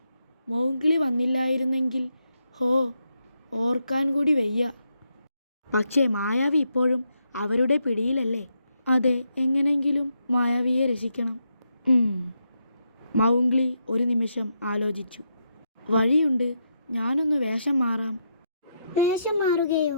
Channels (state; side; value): inverted; both; correlation -0.81